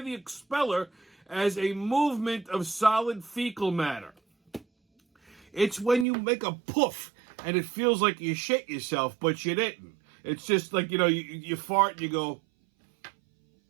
expeller as a movement of solid fecal matter. It's when you make a poof and it feels like you shit yourself, but you didn't. It's just like, you fart and you go,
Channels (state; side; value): drops out; left; at 6.1 s